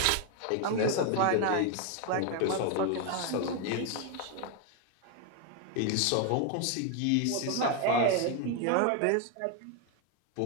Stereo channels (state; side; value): different; both; correlation 0.01